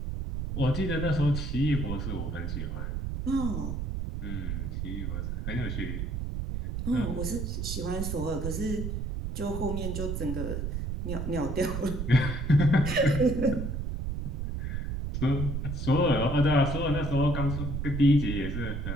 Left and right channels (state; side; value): noise; right; rumble, 3 dB below the sound